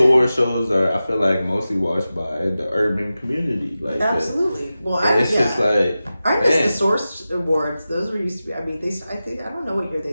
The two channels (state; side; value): inverted; both; correlation -0.94